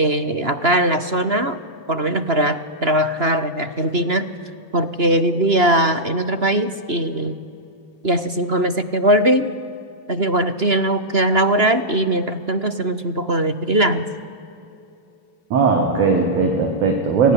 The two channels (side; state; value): left; late; 2.9 ms